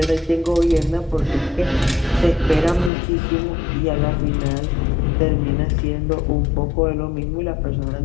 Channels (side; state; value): right; drops out; at 2.9 s